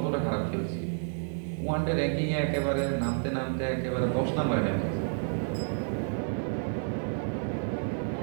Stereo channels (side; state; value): left; silent; 58 dB below the other